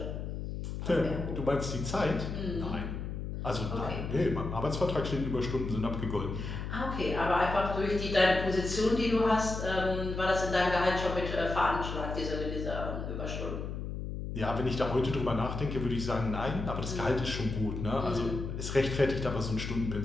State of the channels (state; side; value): noise; left; hum, 5 dB below the sound